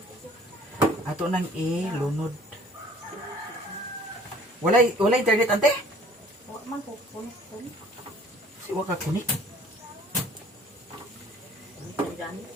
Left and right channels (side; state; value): both; normal; correlation 0.53